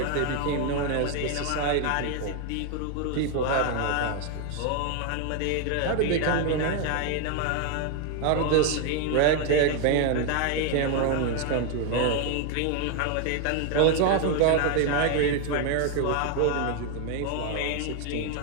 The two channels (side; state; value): both; different; correlation 0.01